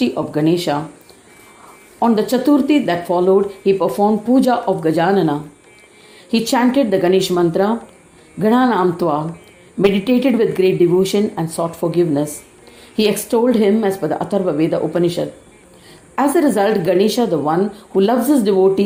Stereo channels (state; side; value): identical; both; correlation 1.00